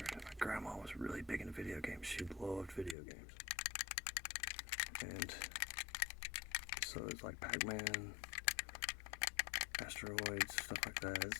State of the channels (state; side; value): drops out; right; at 3.0 s